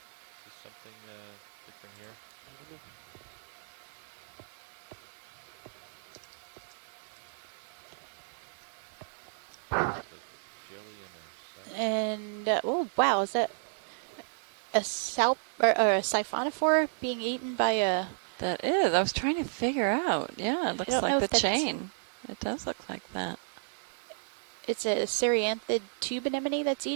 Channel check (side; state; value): left; silent; digital silence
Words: Is this something different here? Enemy? There's a jelly and a cell? And oh wow, is that a or a siphonophore being eaten by a? That is. I was trying to figure out. Yeah, it looks don't know like the if that's- chain. It does look like that. It's a cereanthid tube anemone that's